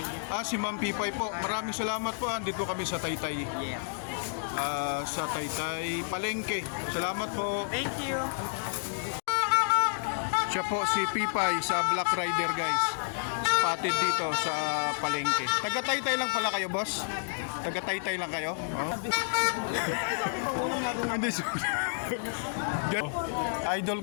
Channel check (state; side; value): silent; right; digital silence